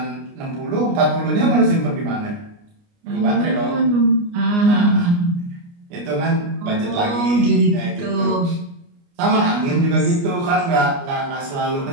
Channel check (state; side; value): late; left; 29 ms